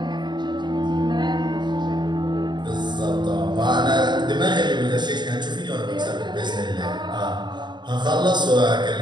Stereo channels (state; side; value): late; left; 0.21 ms